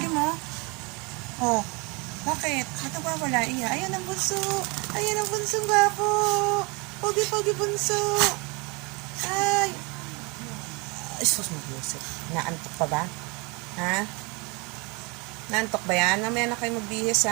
mo. Oh. Bakit? Ito ba wala? Iya. Ayan ang Bunso. Ayan ang Bunso gwapo. Pogi-pogi Bunso. Ay. Ay, sus mo, Yusef. Naantok pa ba? Ha? Naantok ba yan? Mamaya na kayo magbihis,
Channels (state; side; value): quieter; left; 28.0 dB